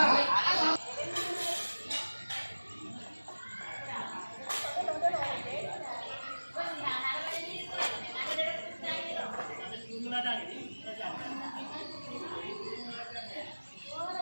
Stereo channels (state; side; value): inverted; both; correlation -1.00